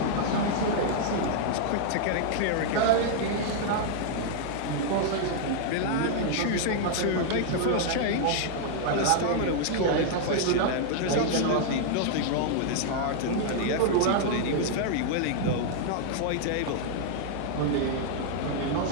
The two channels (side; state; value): both; different; correlation 0.00